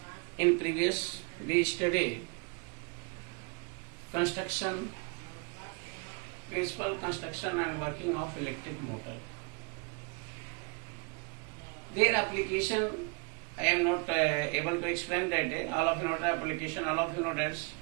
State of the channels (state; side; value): quieter; left; 33.8 dB